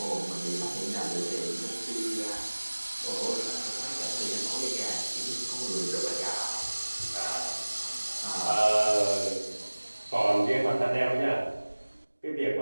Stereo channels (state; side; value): inverted; both; correlation -1.00